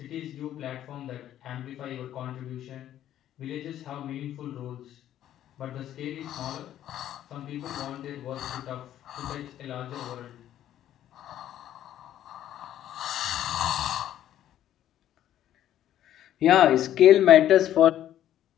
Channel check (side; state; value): right; quieter; 11.8 dB